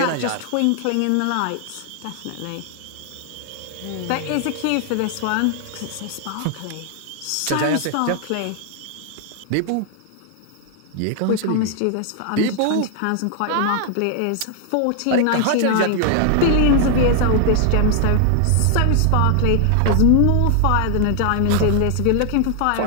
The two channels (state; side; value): different; both; correlation 0.00